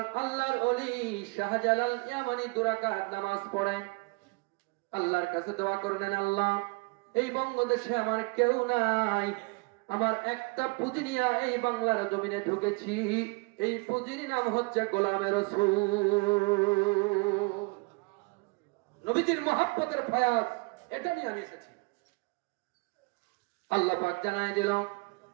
আল্লাহর ওলি শাহজালাল ইয়ামানি 2 রাকাত নামাজ পড়েন, আল্লাহর কাছে দোয়া করলেন, আল্লাহ এই বঙ্গদেশে আমার কেউ নাই, আমার একটা পুঁজি নিয়ে এই বাংলার জমিনে ঢুকেছি। এই পুঁজির নাম হচ্ছে গোলামে রাসূল। নবীজির মহব্বতের ফায়াজ, এটা নিয়ে আমি এসেছি। আল্লাহ পাক জানায় দিল,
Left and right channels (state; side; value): quieter; left; 28.8 dB